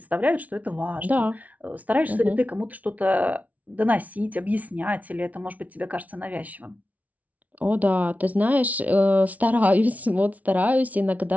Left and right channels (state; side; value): late; left; 0.071 ms